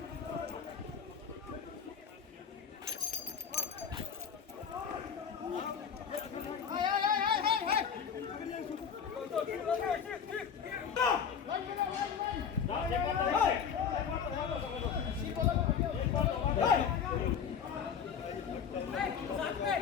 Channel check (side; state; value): right; quieter; 7.3 dB